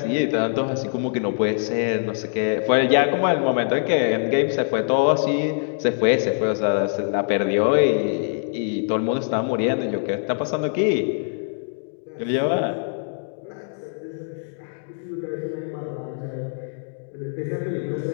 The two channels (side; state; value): right; silent; digital silence